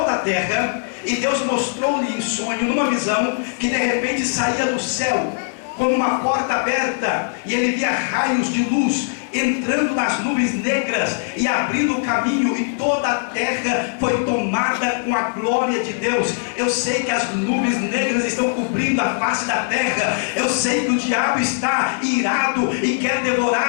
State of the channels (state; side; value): silent; right; digital silence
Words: a terra, e Deus mostrou-lhe em sonho, numa visão, que de repente saía do céu como uma porta aberta, e ele via raios de luz entrando nas nuvens negras e abrindo o caminho, e toda a terra foi tomada com a glória de Deus. Eu sei que as nuvens negras estão cobrindo a face da terra. Eu sei que o diabo está irado e quer